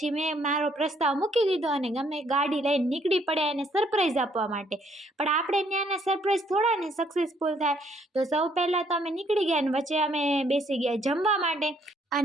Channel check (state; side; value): normal; both; correlation 0.67